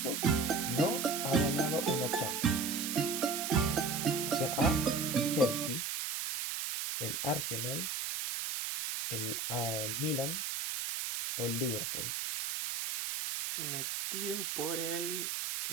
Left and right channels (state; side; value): noise; right; hiss, 2 dB below the sound